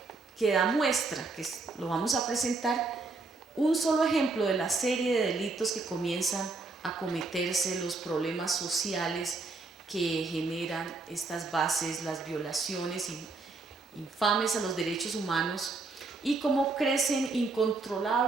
que da muestra, que lo vamos a presentar, un solo ejemplo de la serie de delitos que comienzan a cometerse, los problemas sociales que generan estas bases, las violaciones infames a los derechos humanos, y cómo crecen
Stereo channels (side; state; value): left; quieter; 3.7 dB